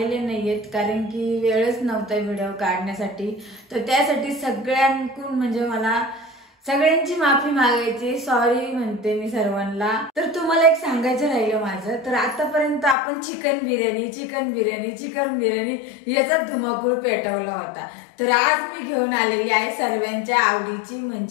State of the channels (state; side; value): drops out; right; at 13.0 s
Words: नाहीयेत, कारण की वेळच नव्हता व्हिडिओ काढण्यासाठी। तर त्यासाठी सगळ्यांकडून म्हणजे मला सगळ्यांची माफी मागायची, सॉरी म्हणते मी सर्वांना। तर तुम्हाला एक सांगायचं राहिलं माझं, तर आतापर्यंत आपण चिकन बिर्याणी याचा धुमाकूळ पेटवला होता। तर आज मी घेऊन आलेली आहे सर्वांच्या आवडीची